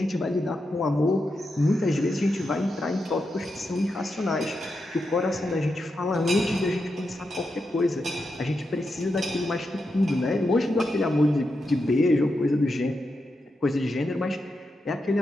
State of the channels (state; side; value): normal; both; correlation 0.87